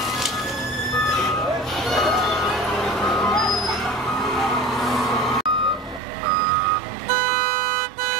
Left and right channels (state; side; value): drops out; left; at 6.0 s